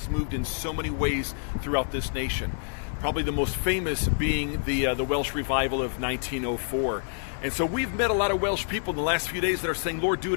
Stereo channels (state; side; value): silent; right; digital silence